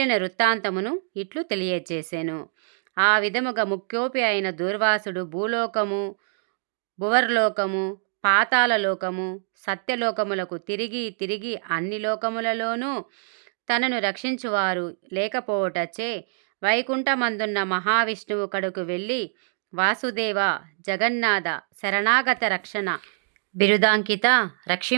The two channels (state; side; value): silent; left; digital silence